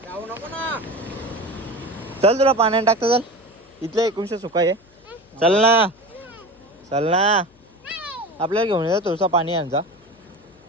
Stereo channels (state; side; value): noise; left; hum, 30 dB below the sound